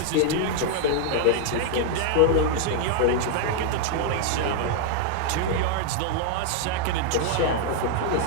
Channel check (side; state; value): both; different; correlation 0.00